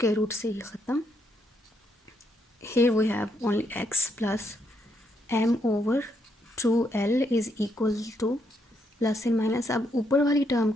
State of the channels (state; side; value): normal; both; correlation 0.76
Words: रूट से ये ख़त्म, here we have only x plus m over 2l is equal to plus and minus. अब ऊपर वाली टर्म